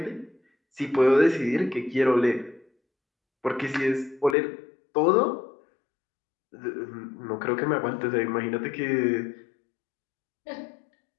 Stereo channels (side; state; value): right; drops out; at 4.4 s